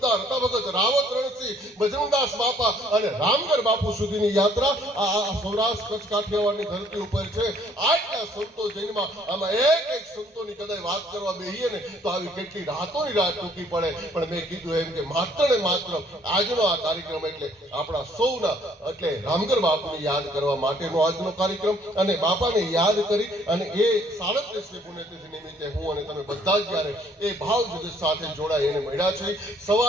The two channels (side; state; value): both; normal; correlation 0.62